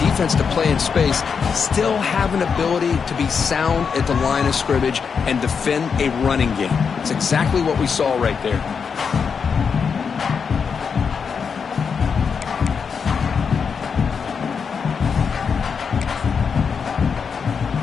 defense to play in space still have an ability to be sound at the line of scrimmage and defend a running game. It's exactly what we saw right there.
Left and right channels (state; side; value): quieter; right; 6.1 dB